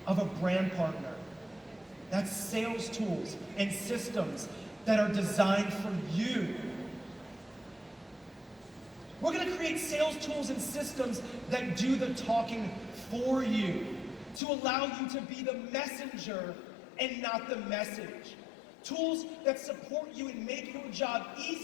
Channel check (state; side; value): drops out; right; at 14.4 s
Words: of a brand partner. That's sales tools and systems that are designed for you. We're going to create sales tools and systems that do the talking for you, to allow you to be the messenger and not the message. Tools that support you and make your job